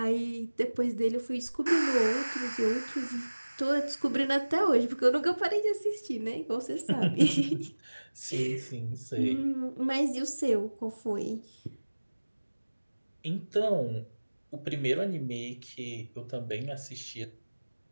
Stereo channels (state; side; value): inverted; both; correlation -1.00